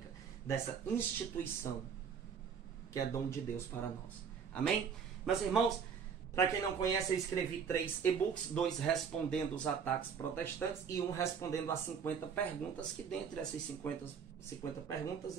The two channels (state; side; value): quieter; left; 6.8 dB